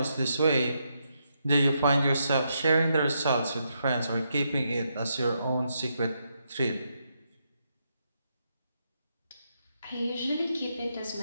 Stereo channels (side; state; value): both; inverted; correlation -0.80